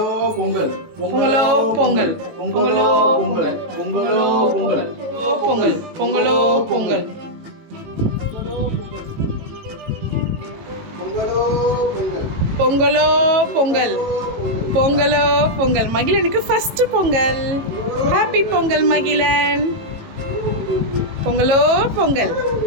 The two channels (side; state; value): left; late; 18 ms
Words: பொங்கல், பொங்கலோ பொங்கல், பொங்கலோ பொங்கல், பொங்கலோ பொங்கல், பொங்கல், பொங்கலோ பொங்கல், பொங்கலோ பொங்கல், பொங்கலோ பொங்கல். மகிழனுக்கு ஃபர்ஸ்ட் பொங்கல். ஹாப்பி பொங்கல் மகிழன். பொங்கலோ பொங்கல்.